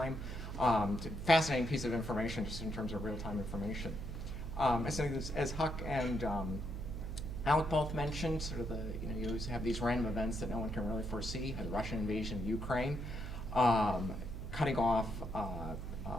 Fascinating piece of information just in terms of real-time information. As Huck and Alec both mentioned, sort of you always have these random events that no one can really foresee. The Russian invasion of Ukraine, cutting off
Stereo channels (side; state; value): right; noise; hum, 6 dB below the sound